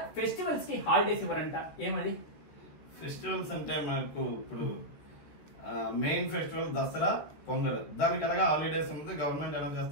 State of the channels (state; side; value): late; right; 14 ms